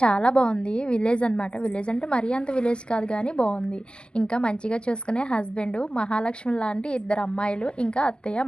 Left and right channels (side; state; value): right; late; 0.052 ms